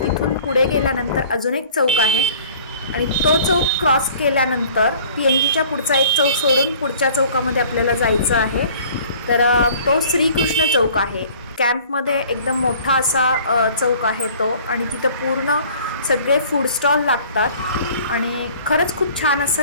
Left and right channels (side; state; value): both; inverted; correlation -0.49